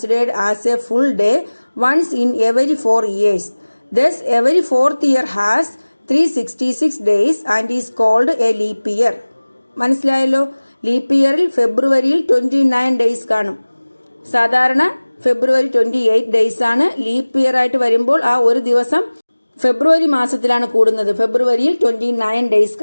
as a full day once in every 4 years. Thus, every 4th year has 366 days and is called a leap year. മനസ്സിലായല്ലോ? Leap ഇയറിൽ ഫെബ്രുവരിയിൽ 29 days കാണും. സാധാരണ ഫെബ്രുവരി 28 days ആണ്. Leap year ആയിട്ട് വരുമ്പോൾ ആ ഒരു ദിവസം ഫെബ്രുവരി മാസത്തിലാണ് കൂടുന്നത്. ഫെബ്രുവരിയിൽ 29 days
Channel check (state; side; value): inverted; both; correlation -1.00